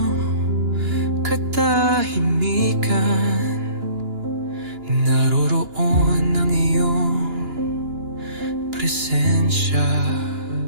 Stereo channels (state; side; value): late; left; 2.9 ms